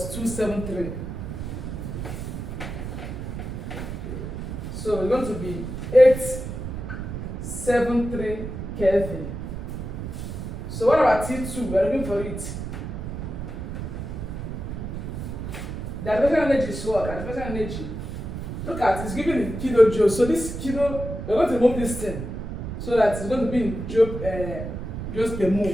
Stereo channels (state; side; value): noise; right; rumble, 6 dB below the sound